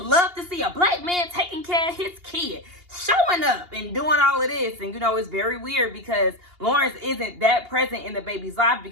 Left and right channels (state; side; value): late; left; 2.8 ms